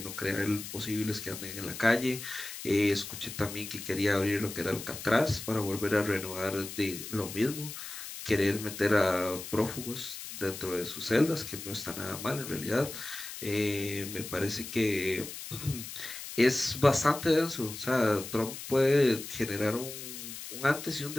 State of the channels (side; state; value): left; noise; hiss, 10 dB below the sound